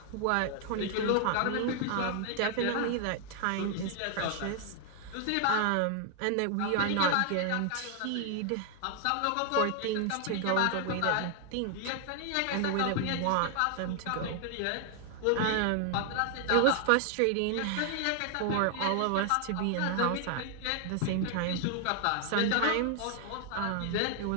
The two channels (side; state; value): both; different; correlation 0.00